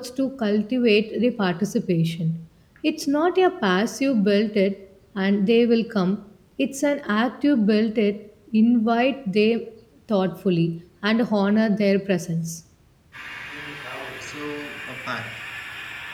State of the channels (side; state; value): both; identical; correlation 1.00